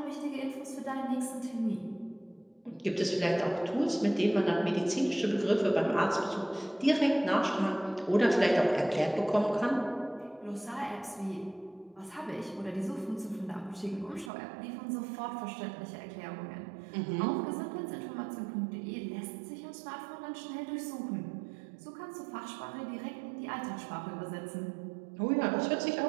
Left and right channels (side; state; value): left; drops out; at 14.3 s